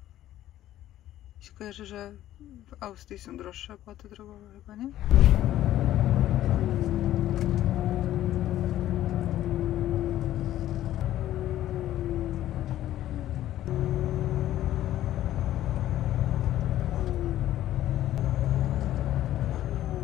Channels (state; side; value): quieter; right; 13.2 dB